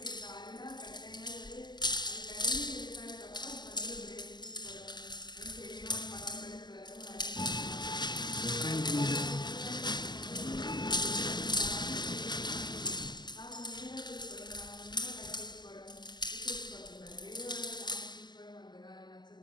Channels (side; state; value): right; late; 0.21 ms